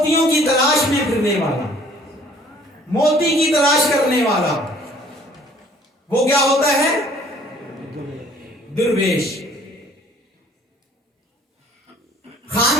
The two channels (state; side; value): normal; both; correlation 0.56